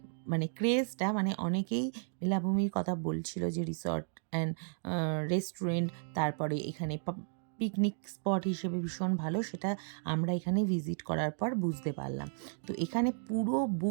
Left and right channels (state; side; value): silent; left; digital silence